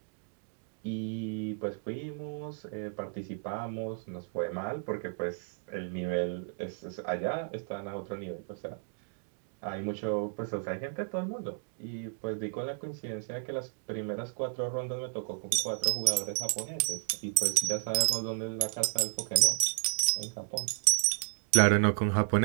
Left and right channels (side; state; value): left; silent; digital silence